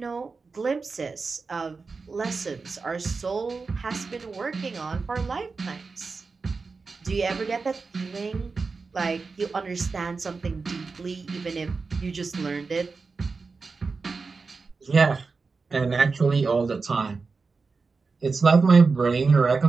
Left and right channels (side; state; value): left; quieter; 4.4 dB